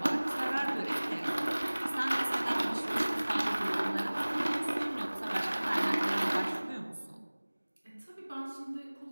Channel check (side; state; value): both; inverted; correlation -1.00